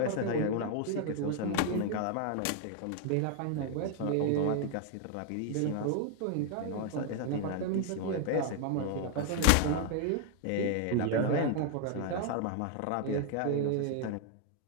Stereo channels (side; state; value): both; different; correlation 0.00